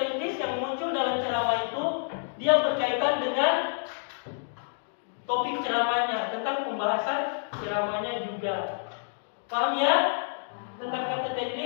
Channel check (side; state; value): right; silent; digital silence